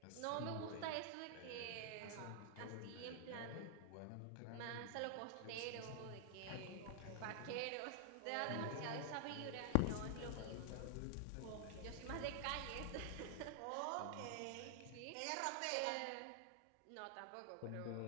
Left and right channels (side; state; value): both; different; correlation 0.00